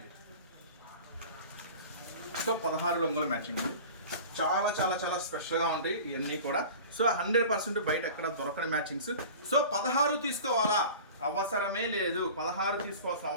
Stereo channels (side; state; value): both; inverted; correlation -0.39